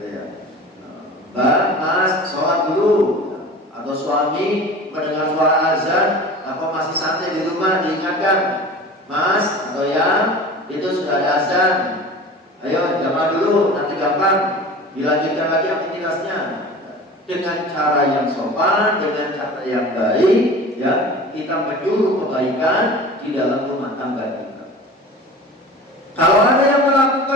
ya. Mbak, Mas sholat dulu, atau suami mendengar suara azan, apa masih santai di rumah diingatkan, Mas atau ya itu sudah ada azan, ayo jamaah dulu, nanti gampang dilanjutkan lagi aktivitasnya. Dengan cara yang sopan, dengan cara yang baik, ya kita menyuruh kebaikan di dalam rumah tangga kita. Kalau ada yang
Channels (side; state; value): both; normal; correlation 0.38